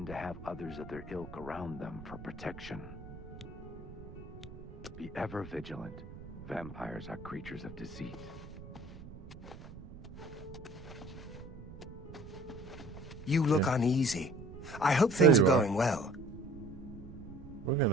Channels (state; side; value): noise; right; rumble, 14 dB below the sound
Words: to have others of their ilk around them for protection. Be ever vigilant. Vampires are creatures of deceit. You look uneasy. I hope things are you are. going well. We're